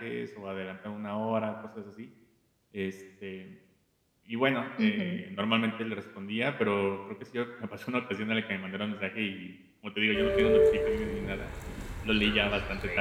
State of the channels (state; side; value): identical; both; correlation 1.00